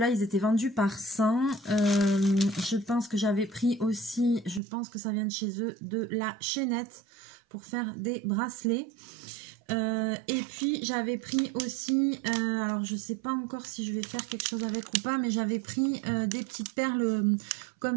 ils étaient vendus par 100. Je pense que j'avais pris aussi, je pense que ça vient de chez eux, de la chaînette pour faire des bracelets. Et puis, j'avais pris aussi, alors je ne sais pas encore si je vais faire quelque chose avec ou pas, mais j'avais pris des petites perles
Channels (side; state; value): left; drops out; at 4.6 s